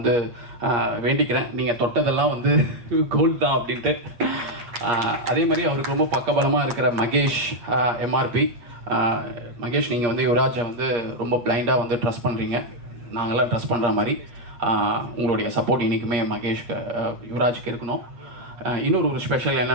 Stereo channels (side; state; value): left; late; 8.5 ms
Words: வேண்டிக்கிறேன். நீங்கள் தொட்டதெல்லாம் வந்து கோல்ட் தான் அப்படின்ட்டு. அதே மாதிரி அவருக்கு ரொம்ப பக்கபலமாக இருக்கிற மகேஷ், MRP. மகேஷ், நீங்கள் வந்து யுவராஜை வந்து ரொம்ப பிளைண்டாக வந்து ட்ரஸ்ட் பண்ணுறீங்க. நாங்களாம் ட்ரஸ்ட் பண்ணுற மாதிரி உங்களுடைய சப்போர்ட் இன்றைக்குமே மகேஷ்க்கு யுவராஜுக்கு இருக்கணும். இன்னொரு ஒரு ஸ்பெஷல்